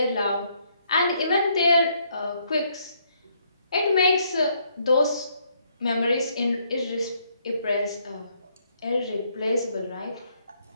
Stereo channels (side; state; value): both; inverted; correlation -0.71